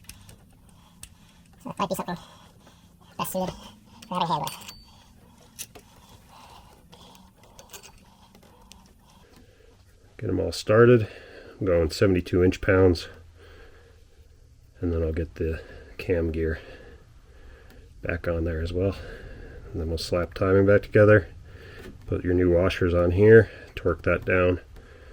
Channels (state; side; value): identical; both; correlation 1.00